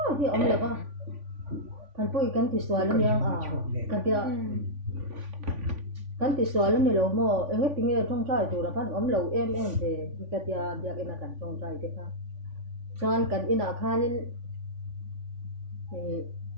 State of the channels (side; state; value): left; late; 3.5 ms